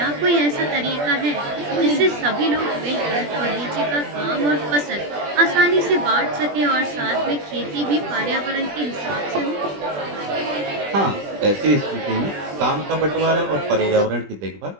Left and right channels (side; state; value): left; late; 20 ms